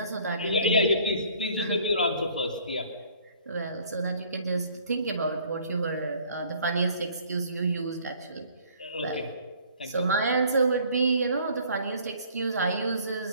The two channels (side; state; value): both; inverted; correlation -0.57